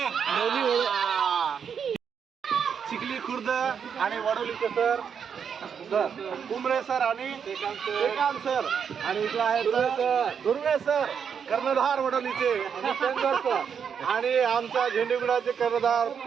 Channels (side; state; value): left; quieter; 7.2 dB